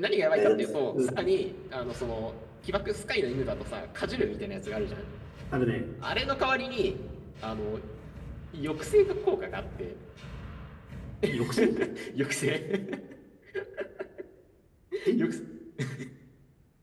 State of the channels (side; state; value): both; identical; correlation 1.00